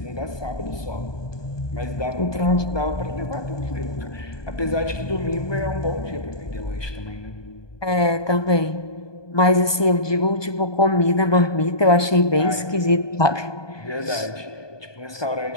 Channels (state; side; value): late; right; 1.2 ms